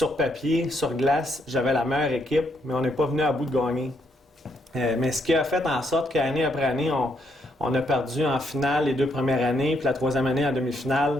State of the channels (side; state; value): both; normal; correlation 0.74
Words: papier, sur glace, j'avais la meilleure équipe, mais on n'est pas venu à bout de gagner. Mais ce qui a fait en sorte qu'année après année, on a perdu en finale les 2 premières années, puis la 3e année en